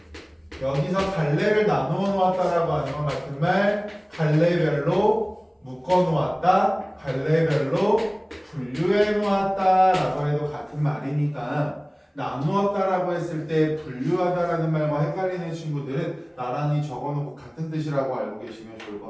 여기서 갈래를 나누어 놓았다라고 하는 건 같은 말 갈래별로 묶어 놓았다, 갈래별로 분류해 놓았다라고 해도 같은 말이니까 나누었다라고 했을 때 분류하다라는 말과 헷갈리는 친구들은 나란히 적어놓고 같은 뜻이라고 알고 계시면 좋을 것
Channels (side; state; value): both; identical; correlation 1.00